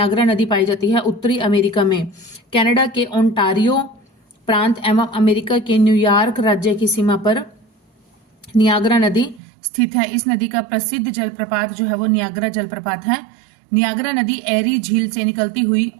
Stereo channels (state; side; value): drops out; left; at 9.4 s